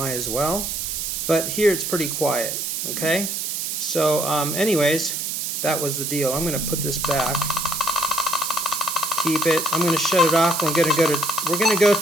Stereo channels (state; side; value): noise; right; hiss, 3 dB below the sound